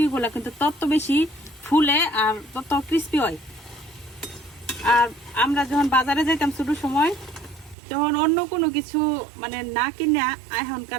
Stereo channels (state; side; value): drops out; left; at 7.8 s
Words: গুলা কিন্তু তত বেশি ফুলে আর তত ক্রিস্পি হয়। আর আমরা যখন বাজারে যাইতাম ছোট সময়, তখন অন্য কোনো কিছু মানে না কিনে